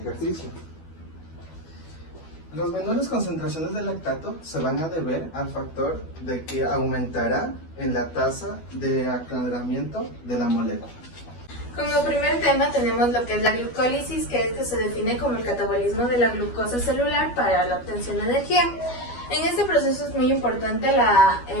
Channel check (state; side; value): late; right; 12 ms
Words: Las menores concentraciones de lactato se van a deber al factor de que aumentará en la tasa de aclaramiento de la molécula. Como primer tema tenemos lo que es la glucólisis, que se define como el catabolismo de la glucosa celular para la obtención de energía. En este proceso es muy importante la